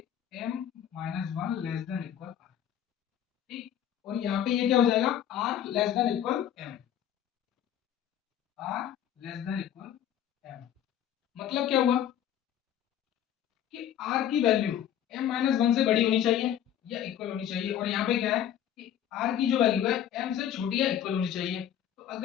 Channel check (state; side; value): quieter; right; 10.3 dB